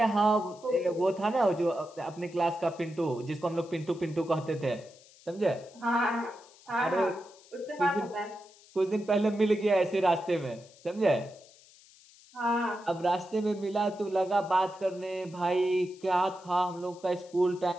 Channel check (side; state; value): left; noise; hiss, 25 dB below the sound